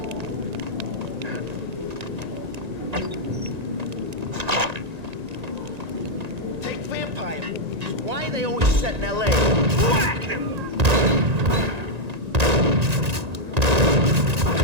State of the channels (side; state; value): left; late; 1.9 ms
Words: Why are they always set in L.A.? Whack him!